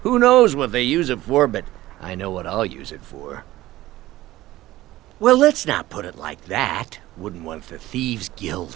Who knows what they use it for, but I know what I'll use it for. Well, let's not put it like that. Wouldn't want the Thieves Guild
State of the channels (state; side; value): quieter; left; 16.4 dB